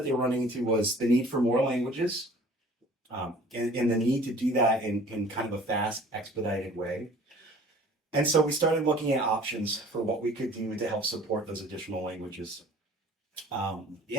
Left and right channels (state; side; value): normal; both; correlation 0.49